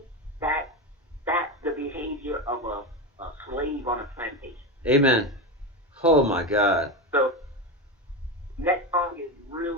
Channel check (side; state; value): both; normal; correlation 0.17